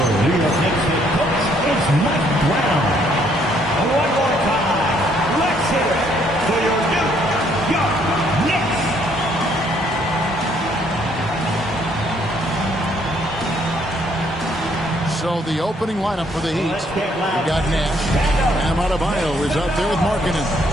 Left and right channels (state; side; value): normal; both; correlation 0.67